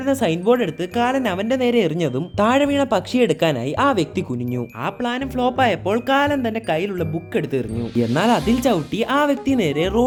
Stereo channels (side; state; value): both; identical; correlation 1.00